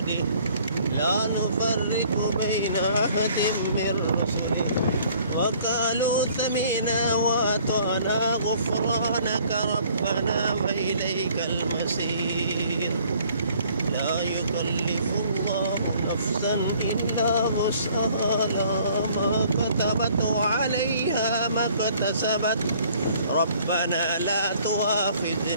لا نفرق بين أحد من رسله وقالوا سمعنا وأطعنا غفرانك ربنا وإليك المصير. لا يكلف الله نفسا إلا وسعها لها ما كتبت وعليها ما اكتسبت ربنا لا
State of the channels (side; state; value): both; inverted; correlation -0.58